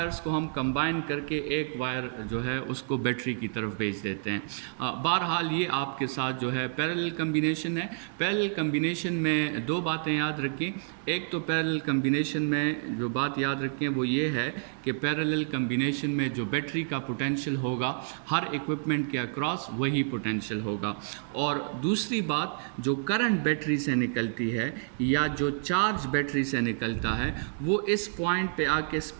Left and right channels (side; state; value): left; silent; digital silence